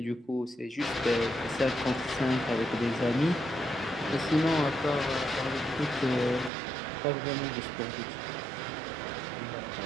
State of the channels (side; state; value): left; drops out; at 6.5 s